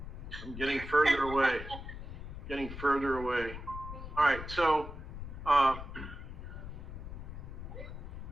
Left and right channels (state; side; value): noise; left; rumble, 9 dB below the sound